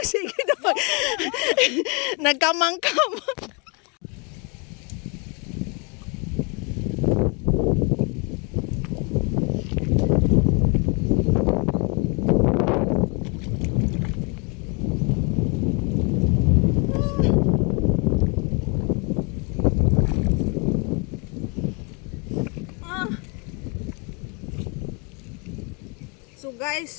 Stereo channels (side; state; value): right; quieter; 32.7 dB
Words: sige daw. Nagkamangkam. So